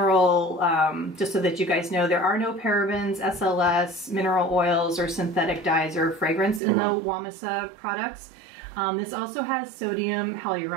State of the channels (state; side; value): drops out; left; at 6.6 s